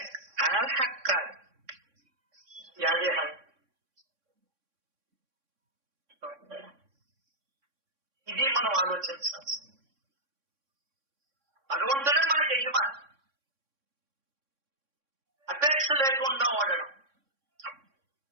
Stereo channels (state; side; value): late; left; 3.6 ms